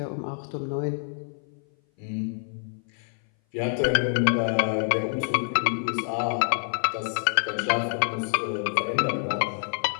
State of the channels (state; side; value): silent; right; 57 dB below the other